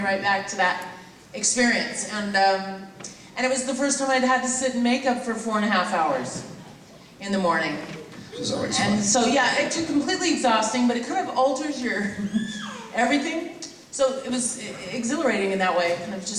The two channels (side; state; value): both; identical; correlation 1.00